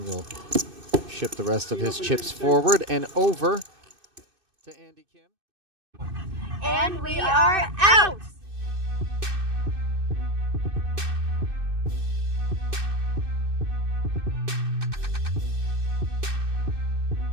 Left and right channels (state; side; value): late; left; 2.6 ms